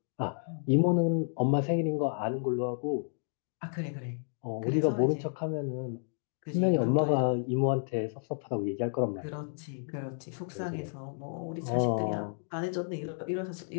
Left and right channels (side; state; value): right; silent; digital silence